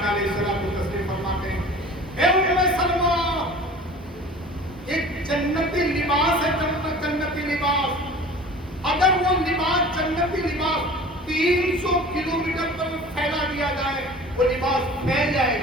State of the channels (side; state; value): both; normal; correlation 0.42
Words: علیہ الصلوۃ والتسلیم فرماتے ہیں اے ام سلمہ ایک جنتی لباس ہے، جنتی لباس، اگر وہ لباس جنتی لباس 300 کلومیٹر پر پھیلا دیا جائے وہ لباس پھیل جائے